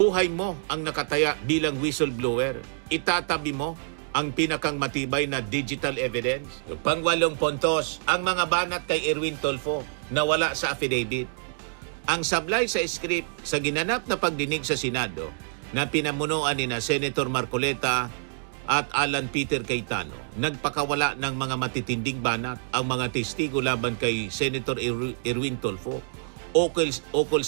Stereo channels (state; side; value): silent; left; digital silence